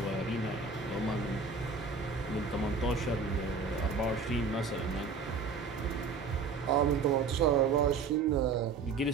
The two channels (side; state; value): left; quieter; 4.8 dB